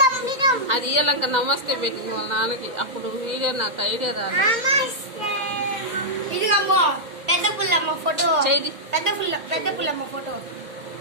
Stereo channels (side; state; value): left; late; 2.1 ms